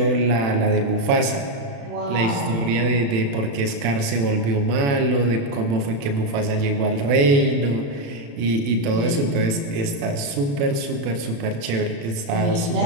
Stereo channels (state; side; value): late; left; 35 ms